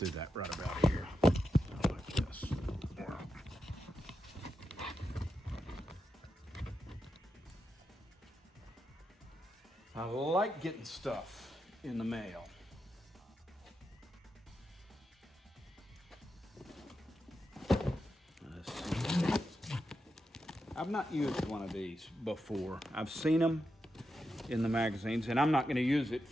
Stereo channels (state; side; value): normal; both; correlation 0.87